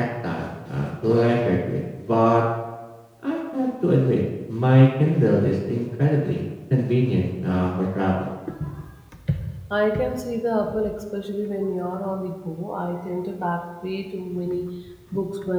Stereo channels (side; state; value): both; identical; correlation 1.00